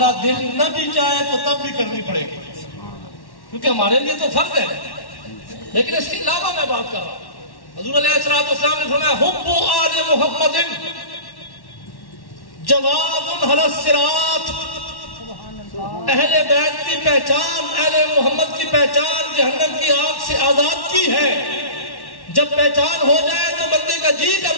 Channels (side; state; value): right; late; 1.1 ms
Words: دل نہ بھی چاہے تو تب بھی کرنی پڑے گی کیونکہ ہمارے لیے تو فرض ہے. لیکن اس کے علاوہ میں بات کر رہا ہوں. حضور علیہ السلام نے فرمایا حب آل محمد جواد علی الصراط. اہل بیت کی پہچان، اہل محمد کی پہچان جہنم کی آگ سے آزاد کی ہے. جب پہچان ہو جائے تو بندے کا جی